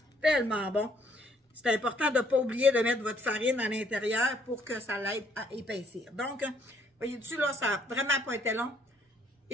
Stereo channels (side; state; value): both; normal; correlation 0.66